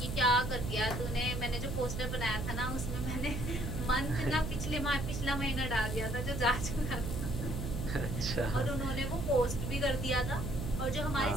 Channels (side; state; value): right; noise; hum, 3 dB below the sound